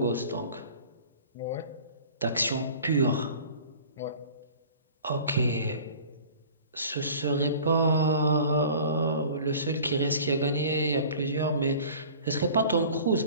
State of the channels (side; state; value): both; inverted; correlation -0.44